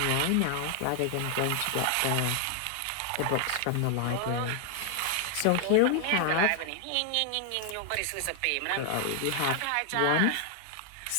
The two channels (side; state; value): both; different; correlation 0.00